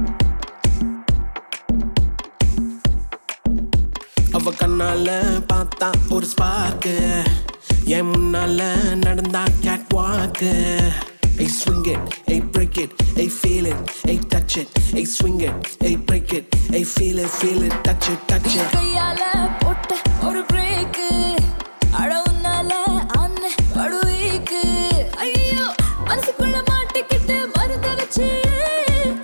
கண்ணால பார்த்தா ஒரு ஸ்பார்க்கு, என் முன்னால நடந்தா கேட் வாக்கு. Hey swing it, hey break it, hey feel it, hey touch it, hey swing it, hey break it, hey feel it, touch it, touch it. கையால போட்ட ஒரு பிரேக், அடவுனால அன்ன படுவீக்கு. ஐயோ மனசுக்குள்ள மாட்டிக்கிட்டு மருந்த வச்சு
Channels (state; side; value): inverted; both; correlation -1.00